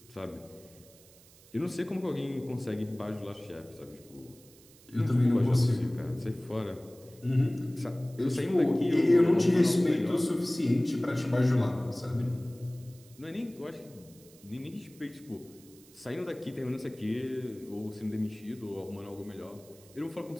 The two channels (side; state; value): right; noise; hiss, 25 dB below the sound